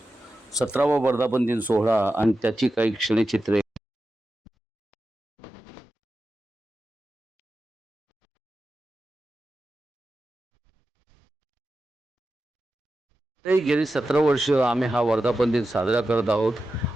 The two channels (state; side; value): normal; both; correlation 0.91